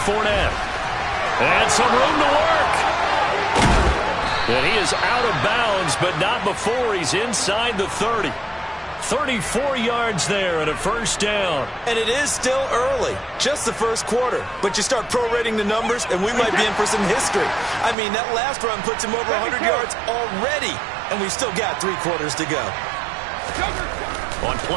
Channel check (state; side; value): drops out; left; at 17.9 s